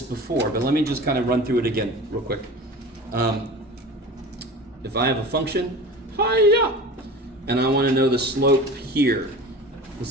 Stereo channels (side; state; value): both; normal; correlation 0.35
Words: before, but let me just kind of run through it again real quick. If I have a function, hiya, and I want to know the slope here, let's